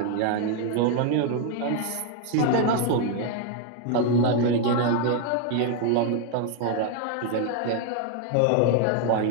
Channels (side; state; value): both; different; correlation 0.00